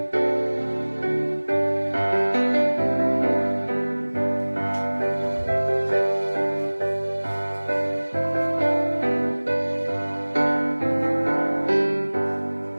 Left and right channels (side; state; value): both; inverted; correlation -1.00